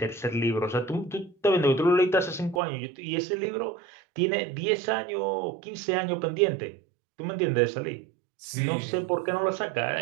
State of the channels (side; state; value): left; drops out; at 2.6 s